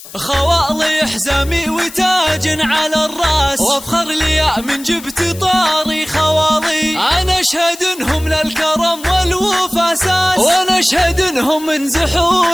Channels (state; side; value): noise; left; hiss, 16 dB below the sound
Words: خوالي حزامي وتاج على الراس، وافخر لي من جبت طاري خوالي. انا اشهد انهم للكرم والوفا اساس، وانا اشهد انهم من